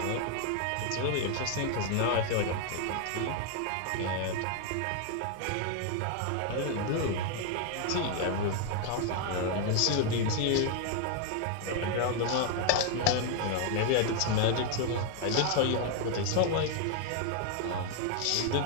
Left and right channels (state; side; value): different; both; correlation 0.00